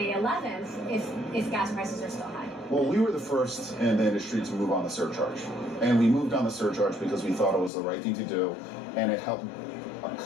11th if gas prices are still high? Well, we were the first in the industry to move on the surcharge. And we moved on the surcharge because we thought it was the right thing to do, and it helped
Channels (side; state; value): right; drops out; at 7.7 s